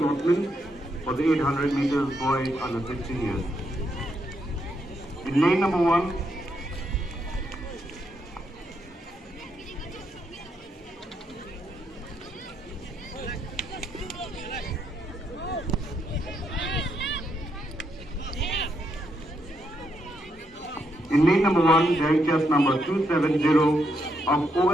for the 800 meters boys under 16 years. In lane number 1, bearing chest number 270 of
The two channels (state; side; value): normal; both; correlation 0.78